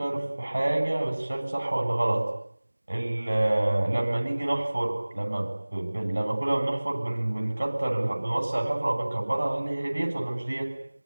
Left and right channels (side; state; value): both; inverted; correlation -1.00